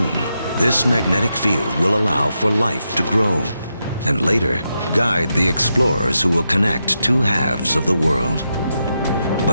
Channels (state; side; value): inverted; both; correlation -0.85